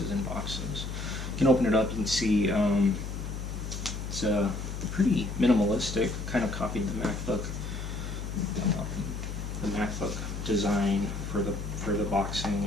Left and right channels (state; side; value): noise; left; hum, 6 dB below the sound